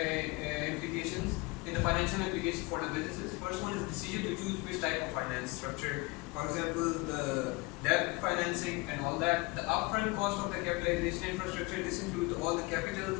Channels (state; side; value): quieter; right; 24.8 dB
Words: in the financial implications for the businesses. First one is decision to choose which type of finance structure. For example, the debt financing and all that. The upfront cost of the capitalization infrastructure. This includes all the